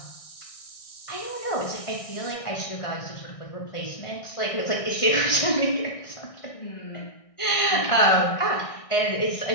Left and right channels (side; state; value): right; late; 1.6 ms